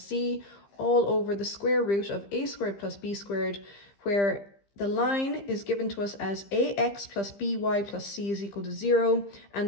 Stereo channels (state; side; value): late; right; 15 ms